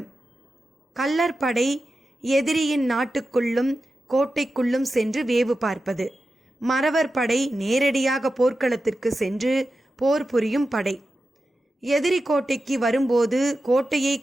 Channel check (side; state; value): both; normal; correlation 0.92